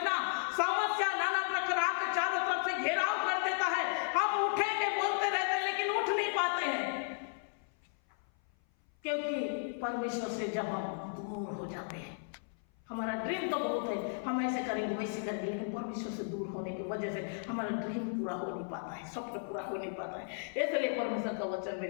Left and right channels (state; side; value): silent; right; 55 dB below the other